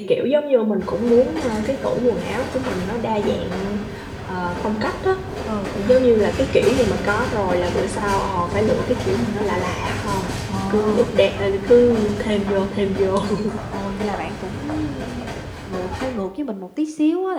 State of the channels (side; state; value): both; identical; correlation 1.00